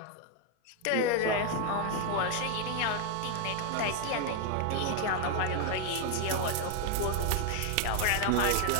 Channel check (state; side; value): different; both; correlation 0.01